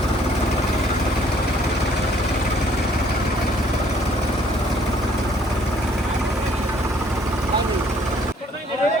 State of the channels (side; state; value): both; normal; correlation 0.62